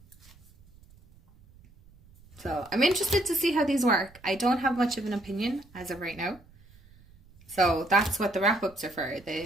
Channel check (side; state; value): right; noise; rumble, 26 dB below the sound